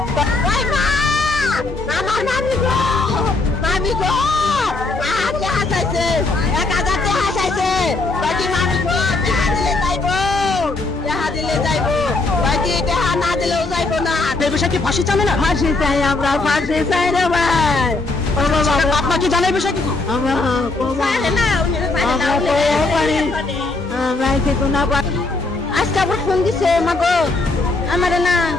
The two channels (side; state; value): right; quieter; 3.4 dB